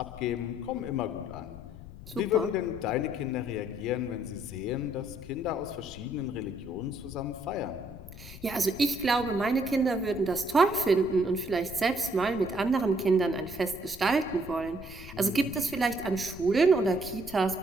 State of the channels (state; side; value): noise; left; rumble, 15 dB below the sound